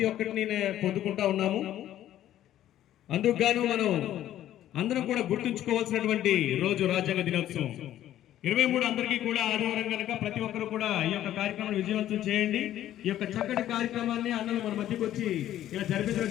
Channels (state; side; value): quieter; right; 12.4 dB